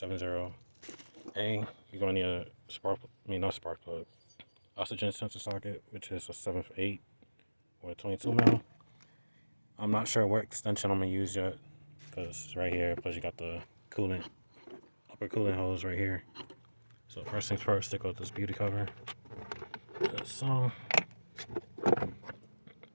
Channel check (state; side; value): inverted; both; correlation -1.00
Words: You're going to need a not spark plug, oxygen sensor socket, which is a 7/8 or a 22 mil. I'm not sure what extension I'm going to use yet, because it's right here, plus you got the upper coolant hose right here. So first things first, stick out this beauty cover. So, and